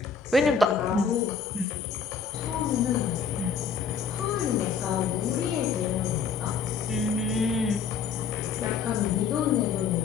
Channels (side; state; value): right; quieter; 6.1 dB